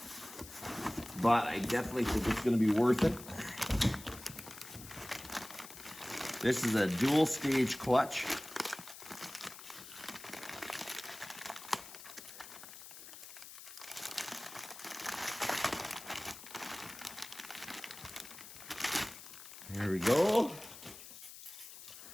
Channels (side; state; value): left; noise; hiss, 14 dB below the sound